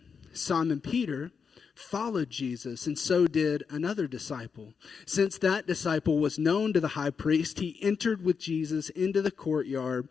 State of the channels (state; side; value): quieter; right; 6.0 dB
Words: Simon Peter followed Jesus, and so did another disciple. Since that disciple was known to the high priest, he entered with Jesus into the courtyard